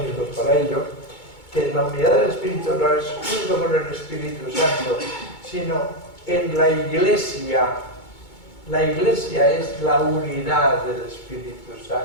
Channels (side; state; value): right; late; 2.2 ms